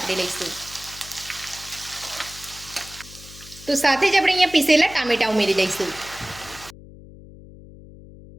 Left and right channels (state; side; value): noise; left; hum, 18 dB below the sound